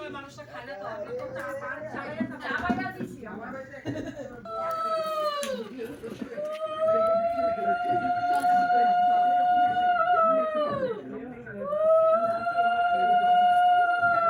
মানুষটা খায় না তো, আমরা তো চা বাইরা দিছি আমার বাড়িতে।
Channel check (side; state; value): both; identical; correlation 1.00